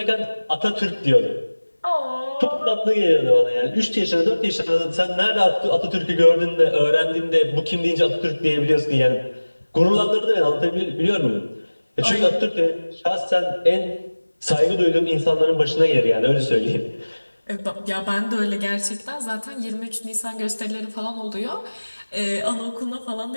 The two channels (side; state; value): both; inverted; correlation -1.00